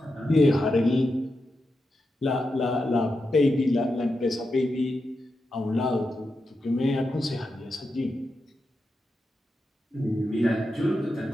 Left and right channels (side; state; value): both; normal; correlation 0.88